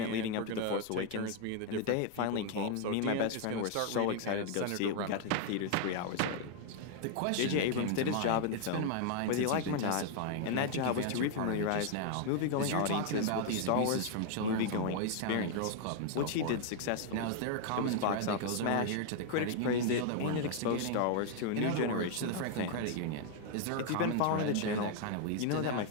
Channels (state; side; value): different; both; correlation 0.00